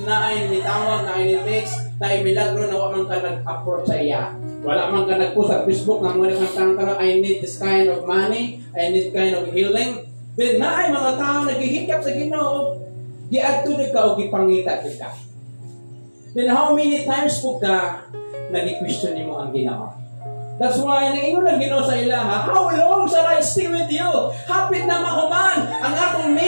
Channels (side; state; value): both; inverted; correlation -1.00